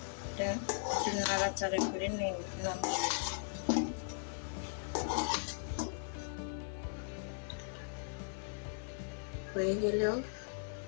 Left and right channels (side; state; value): right; silent; 52 dB below the other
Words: একটু নাড়াচাড়া করে নামিয়ে হয়ে গেল